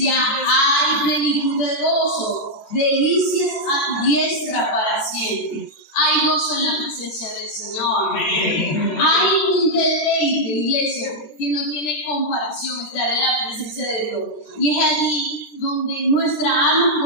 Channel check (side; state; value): right; late; 13 ms